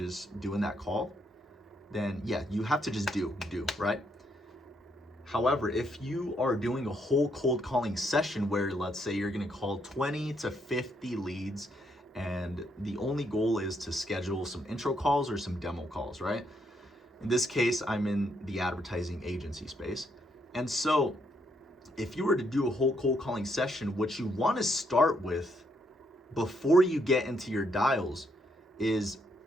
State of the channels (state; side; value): normal; both; correlation 0.75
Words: doing that call, then yeah, you have to just do, right? However, if you are doing a whole cold calling session where let's say you're gonna call 20 to 50 leads and the only goal is to schedule some intro calls or some demo calls, right? In this case, I'm in the advertising agency space. And so if you were to do a whole cold calling session, what you want to start with before you get into your dials is